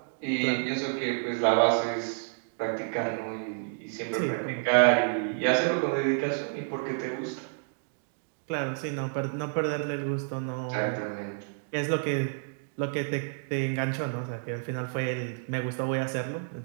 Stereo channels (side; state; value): left; silent; digital silence